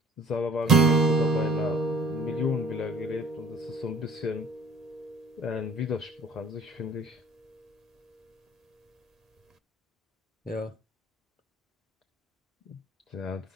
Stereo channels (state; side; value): normal; both; correlation 0.51